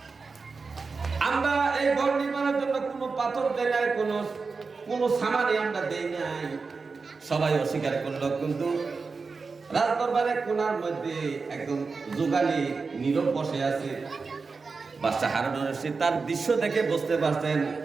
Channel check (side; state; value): left; quieter; 4.5 dB